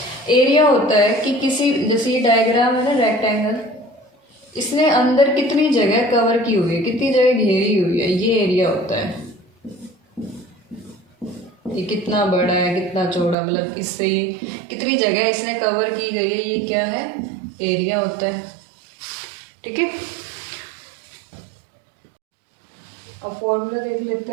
एरिया होता है कि किसी, जैसे ये डायग्राम है ना रेक्टेंगल, इसने अंदर कितनी जगह कवर की हुई है, कितनी जगह घेरी हुई है, ये एरिया होता है। ये कितना बड़ा है, कितना चौड़ा, मतलब इससे ये कितनी जगह इसने कवर की गई है, ये क्या है, एरिया होता है, ठीक है। अब फॉर्मूला देख लेते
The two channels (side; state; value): left; drops out; at 13.4 s